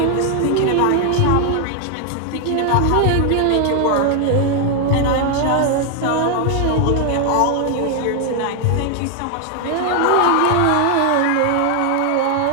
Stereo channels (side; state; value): both; different; correlation 0.00